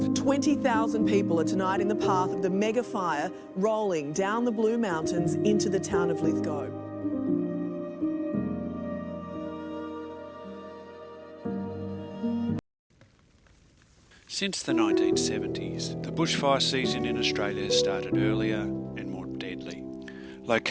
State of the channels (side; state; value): both; identical; correlation 1.00